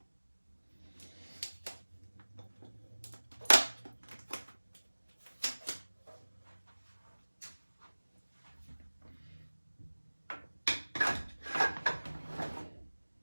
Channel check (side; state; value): both; inverted; correlation -1.00